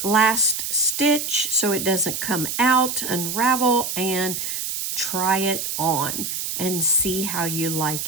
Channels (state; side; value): noise; right; hiss, 3 dB below the sound